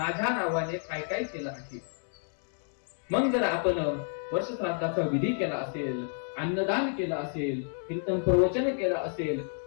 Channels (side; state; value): right; silent; 58 dB below the other